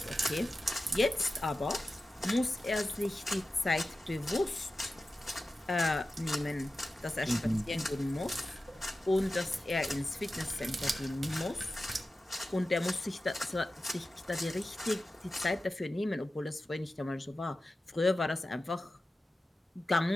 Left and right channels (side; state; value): both; normal; correlation 0.94